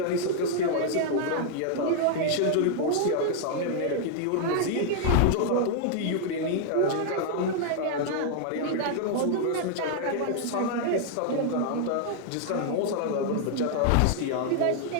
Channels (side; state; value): both; different; correlation 0.00